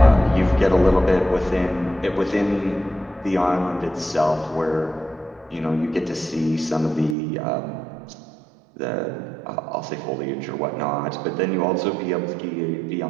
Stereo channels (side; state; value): left; drops out; at 7.2 s